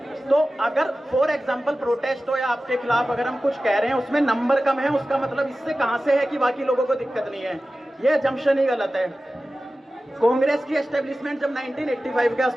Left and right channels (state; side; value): normal; both; correlation 0.95